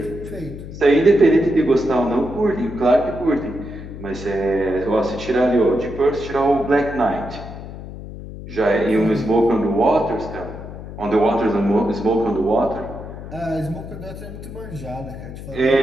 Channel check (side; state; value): left; noise; hum, 12 dB below the sound